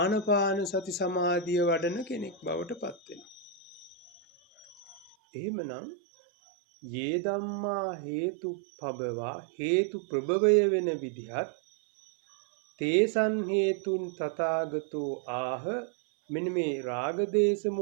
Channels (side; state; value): left; drops out; at 5.2 s